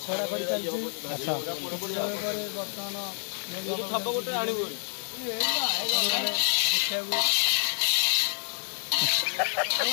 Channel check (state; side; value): silent; right; 59 dB below the other